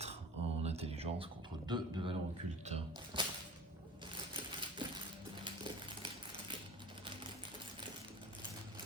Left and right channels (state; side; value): normal; both; correlation 0.39